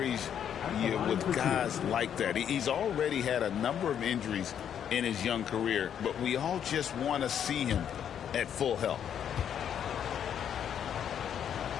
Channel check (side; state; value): right; quieter; 9.0 dB